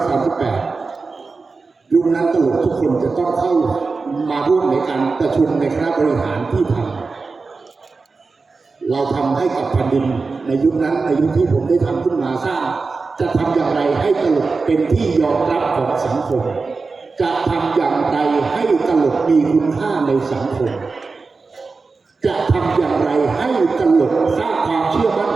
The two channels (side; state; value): left; quieter; 4.2 dB